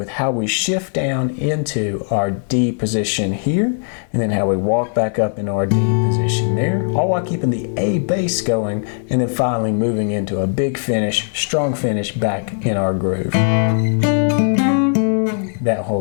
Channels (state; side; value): silent; right; 58 dB below the other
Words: how we shift down into our D position here, and then how we walk back up in our D position there, all while keeping the A bass going, and then finally moving into a big finish, strong finish back in our groove. That